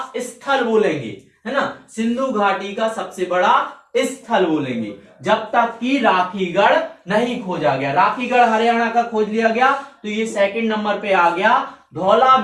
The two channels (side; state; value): both; identical; correlation 1.00